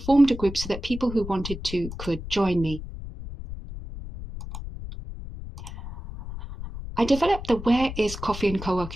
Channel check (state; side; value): noise; left; rumble, 10 dB below the sound